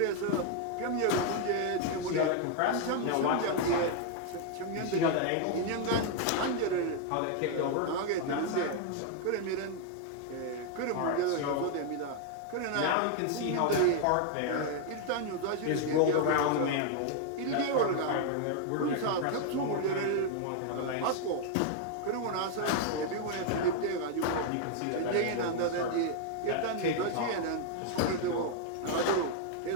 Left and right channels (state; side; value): different; both; correlation 0.00